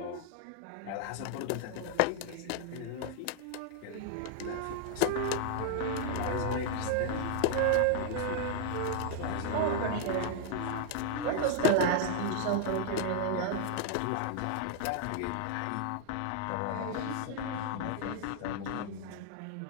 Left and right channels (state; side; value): different; both; correlation 0.00